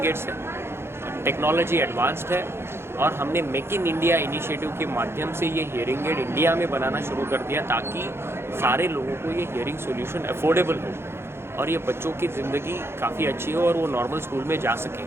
एड्स है, टेक्नोलॉजी एडवांस्ड है, और हमने मेक इन इंडिया इनिशिएटिव के माध्यम से ये हियरिंग एड इंडिया में बनाना शुरू कर दिया ताकि सारे लोगों को ये हियरिंग सॉल्यूशन अफोर्डेबल हो और ये बच्चों की ज़िंदगी काफ़ी अच्छी हो और वो नॉर्मल स्कूल में जा सकें।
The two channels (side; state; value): left; late; 0.12 ms